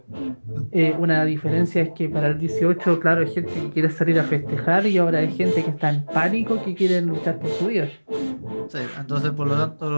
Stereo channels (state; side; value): inverted; both; correlation -1.00